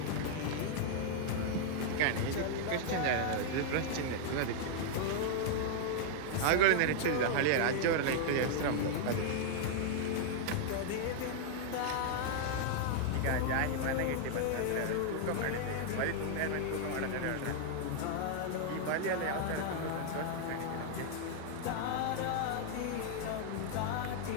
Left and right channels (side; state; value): both; different; correlation -0.01